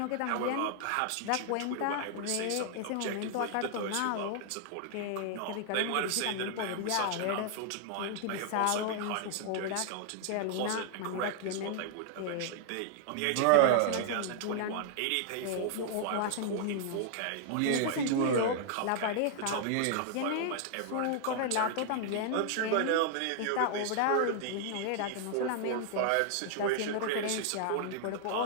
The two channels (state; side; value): different; both; correlation 0.00